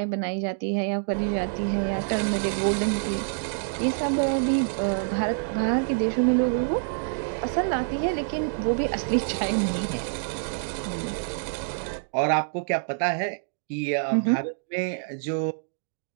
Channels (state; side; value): silent; left; digital silence